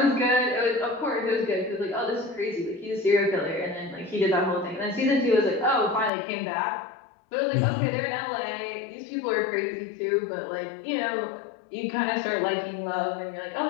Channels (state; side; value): drops out; right; at 6.1 s